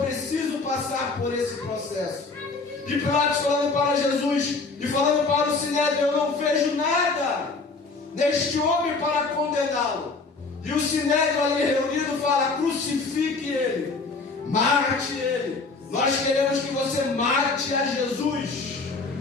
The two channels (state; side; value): quieter; right; 3.9 dB